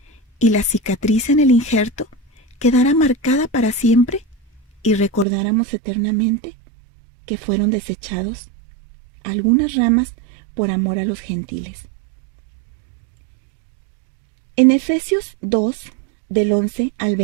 y la cicatriz en el injerto quedara marcada para siempre, y recordáramos eternamente que fueron desechados algunas ramas por amor a los gentiles. En Efesios 2, del 11 al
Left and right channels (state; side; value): drops out; left; at 5.2 s